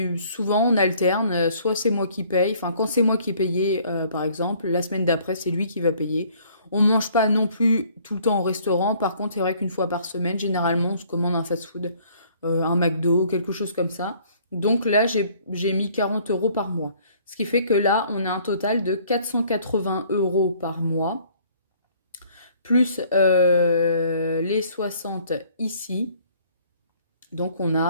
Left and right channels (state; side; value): inverted; both; correlation -0.59